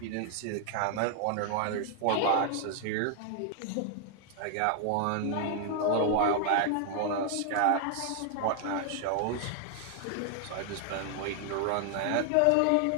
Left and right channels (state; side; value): different; both; correlation 0.00